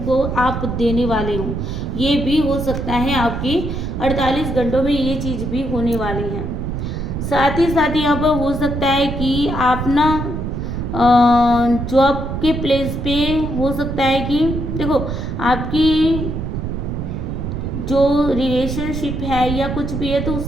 आप देने वाले हो, ये भी हो सकता है। आपकी 48 घंटों में ये चीज़ भी होने वाली है। साथ ही साथ यहाँ पर हो सकता है कि आप ना जॉब के प्लेस पे हो सकता है कि देखो आपकी जो रिलेशनशिप है या कुछ भी है तो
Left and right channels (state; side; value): noise; right; rumble, 4 dB below the sound